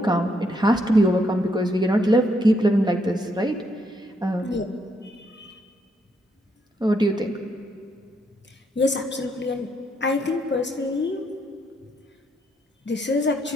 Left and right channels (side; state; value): both; normal; correlation 0.75